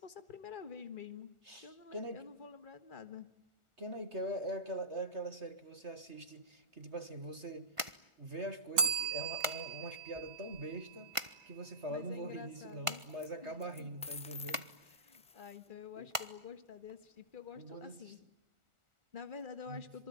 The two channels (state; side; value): late; left; 1.5 ms